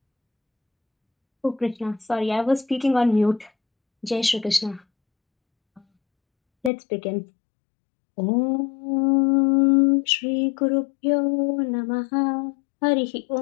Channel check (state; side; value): drops out; right; at 6.7 s